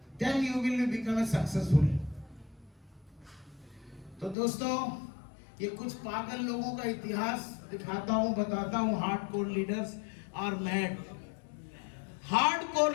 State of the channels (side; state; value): right; drops out; at 4.4 s